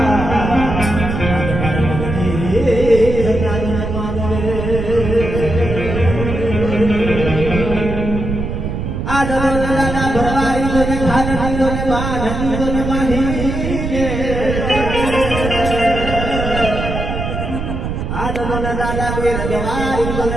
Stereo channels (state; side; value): noise; right; rumble, 4 dB below the sound